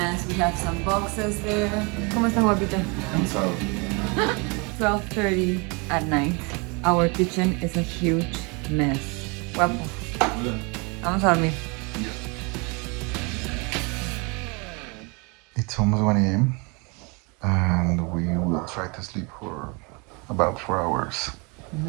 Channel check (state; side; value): quieter; left; 30.5 dB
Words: We have some boxes there. ¿Cómo está, guapita? And so 12:30 at night. Our kitchen is a huge mess. Guapo. Vamos a dormir. it's almost 1 a.m. and we will try to sleep for about 4 hours.